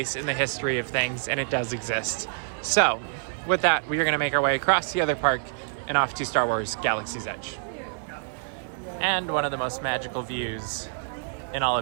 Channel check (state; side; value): silent; left; digital silence